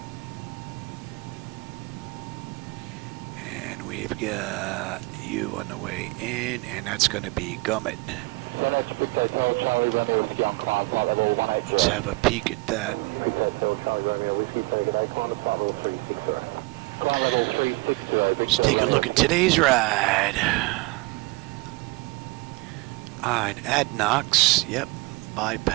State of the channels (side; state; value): left; quieter; 24.2 dB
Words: And we've got you on the way in, and that's going to be Gummit. Let's have a peek at that. Let's take a look at today's ride. Alright, Adnox, yep,